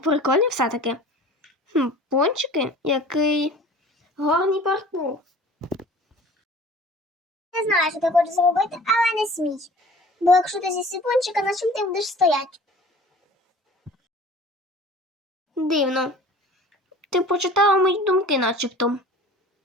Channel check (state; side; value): normal; both; correlation 0.45